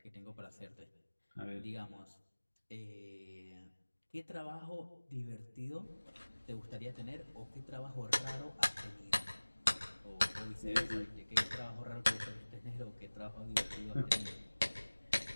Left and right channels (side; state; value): both; inverted; correlation -1.00